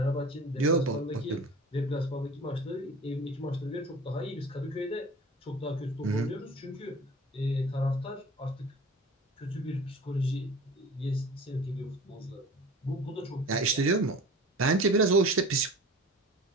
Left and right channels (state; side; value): normal; both; correlation 0.40